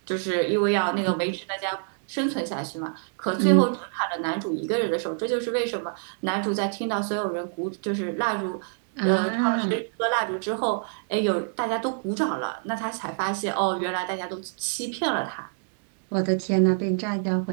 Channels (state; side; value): silent; left; digital silence